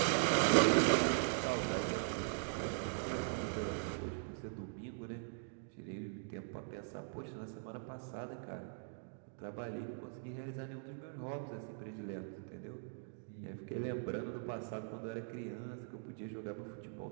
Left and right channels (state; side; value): silent; left; digital silence